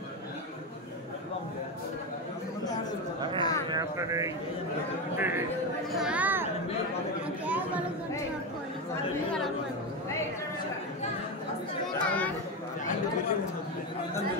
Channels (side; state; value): both; normal; correlation 0.14